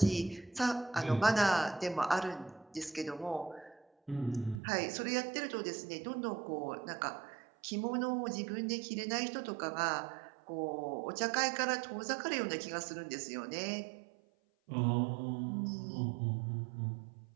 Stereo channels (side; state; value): left; drops out; at 4.6 s